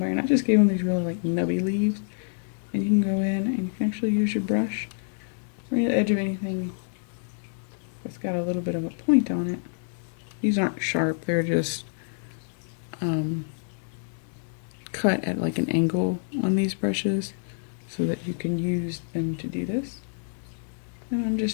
and I just gave them these really like nubby leaves, and you can go in and you can actually use your brush right at the edge of anything that's got a little bit of a point on it. These aren't sharp, they're just cut at like an angle on these brushes so that you can use them to do this. And I'm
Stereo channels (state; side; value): silent; right; digital silence